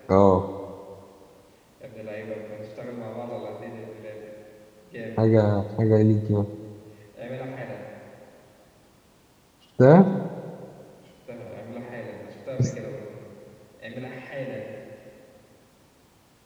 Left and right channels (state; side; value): identical; both; correlation 1.00